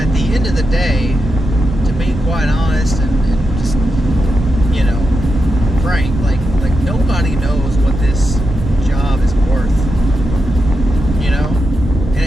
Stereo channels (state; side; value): normal; both; correlation 0.87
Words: the end of the day, to be quite honest and just, frank, like nobody knows what this job is worth,